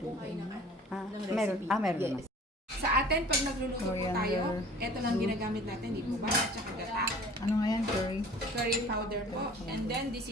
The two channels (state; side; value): normal; both; correlation 0.47